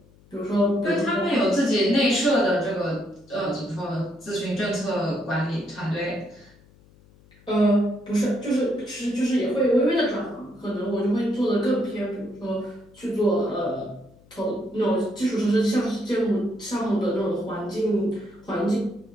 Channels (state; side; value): noise; left; hum, 27 dB below the sound